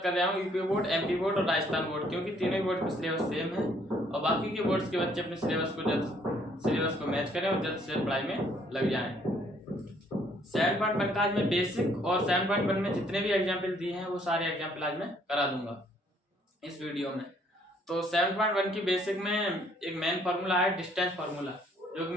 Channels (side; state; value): both; normal; correlation 0.64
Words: कर रहा हूं, यूपी बोर्ड, एमपी बोर्ड और राजस्थान बोर्ड, क्योंकि तीनों ही बोर्ड का सिलेबस सेम है और बाकी के बोर्ड्स के बच्चे अपने सिलेबस को मैच करें और जल्द से जल्द पढ़ाई में लग जाएं। 7.1 का आज मैं बेसिक और 7.1 में जितने भी एग्जाम्पल दिए हैं वो सारे एग्जाम्पल आज मैं करा दूंगा इस वीडियो में। तो 7.1 की बेसिक में एक मेन फार्मूला है डिस्टेंस फार्मूला, जो कि